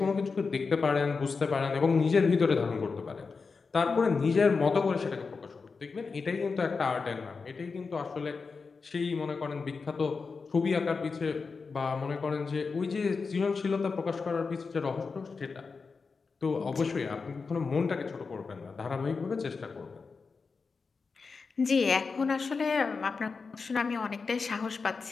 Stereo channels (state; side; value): quieter; right; 4.7 dB